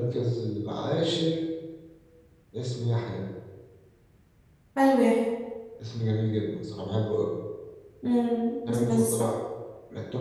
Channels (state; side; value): identical; both; correlation 1.00